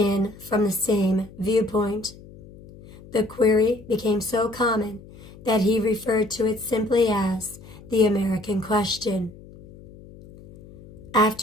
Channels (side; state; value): left; noise; hum, 20 dB below the sound